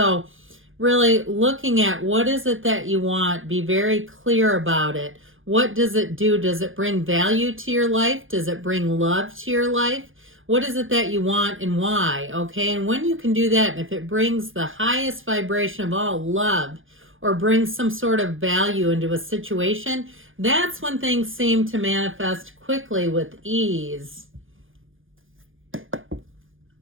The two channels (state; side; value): late; left; 0.58 ms